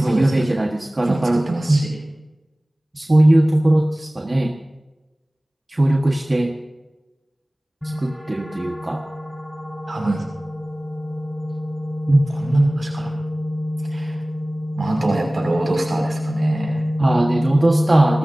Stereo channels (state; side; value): normal; both; correlation 0.98